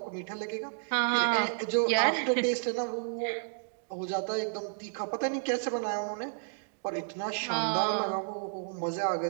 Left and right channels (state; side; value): silent; left; digital silence